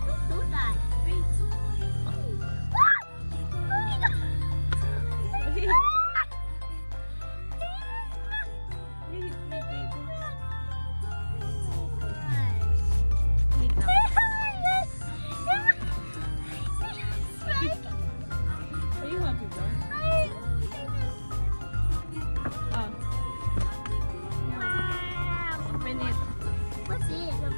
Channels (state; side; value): inverted; both; correlation -1.00